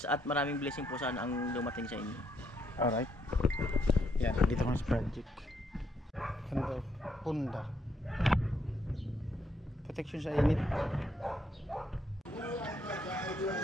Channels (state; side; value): normal; both; correlation 0.74